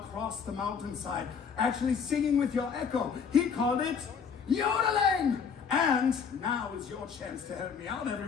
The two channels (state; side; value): quieter; right; 6.4 dB